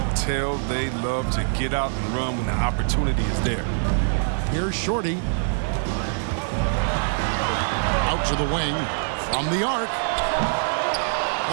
tell they love to get out and run when the opportunity is there. Here's Shorty. Out to the wing. From the arc.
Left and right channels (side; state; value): left; silent; digital silence